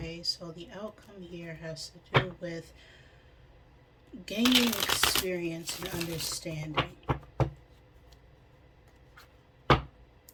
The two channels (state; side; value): identical; both; correlation 1.00